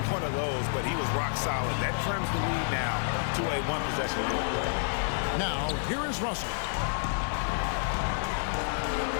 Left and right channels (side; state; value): right; silent; 58 dB below the other